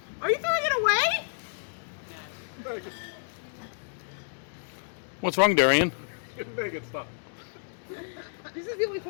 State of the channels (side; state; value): right; silent; digital silence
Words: Are you throwing it away? What's wrong, Durian? Make it stop. This is the only